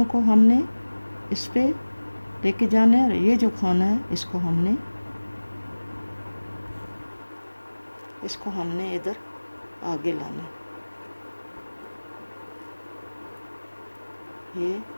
को हमने इस पे लेके जाना है और ये जो खाना है इसको हमने इधर आगे लाना है। ये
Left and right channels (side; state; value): both; inverted; correlation -1.00